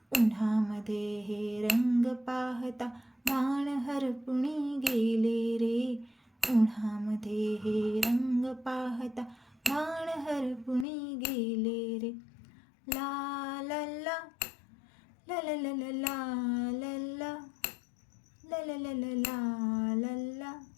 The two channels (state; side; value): drops out; right; at 10.9 s